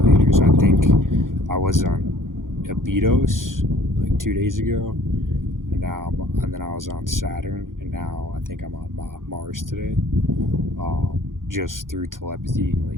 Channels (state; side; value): late; left; 0.90 ms